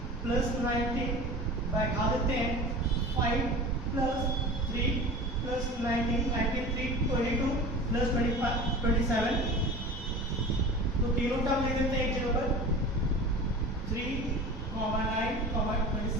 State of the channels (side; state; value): both; normal; correlation 0.36